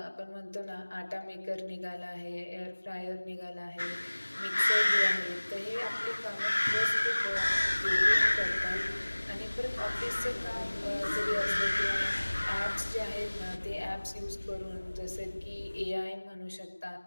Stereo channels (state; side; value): inverted; both; correlation -1.00